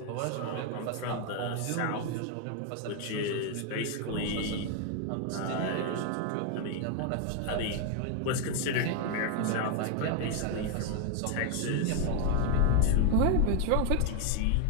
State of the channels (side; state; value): both; different; correlation 0.01